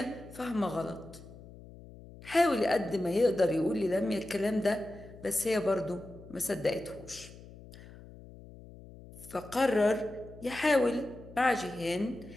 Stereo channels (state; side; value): noise; left; hum, 18 dB below the sound